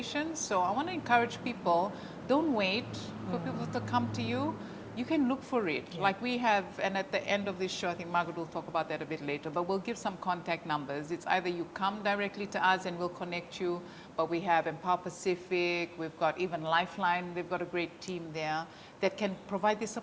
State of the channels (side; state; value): both; identical; correlation 1.00